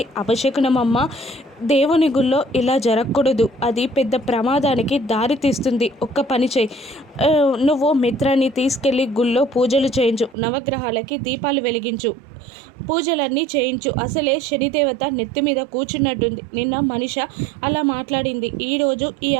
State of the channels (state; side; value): drops out; left; at 10.4 s